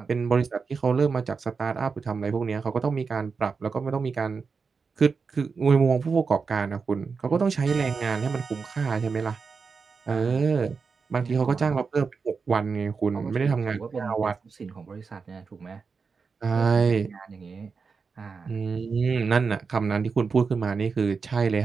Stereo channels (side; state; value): left; quieter; 5.1 dB